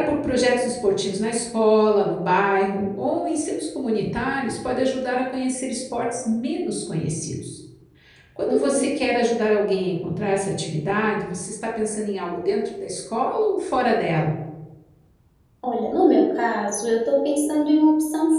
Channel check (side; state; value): both; identical; correlation 1.00